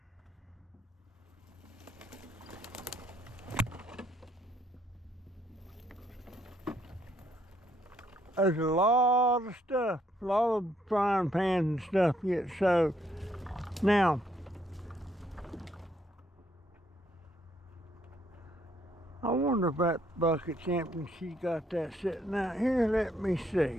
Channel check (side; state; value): both; normal; correlation 0.70